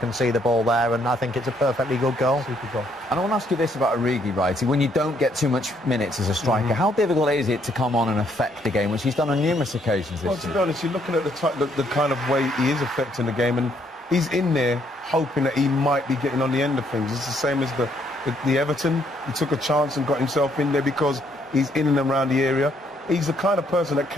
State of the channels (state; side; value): normal; both; correlation 0.70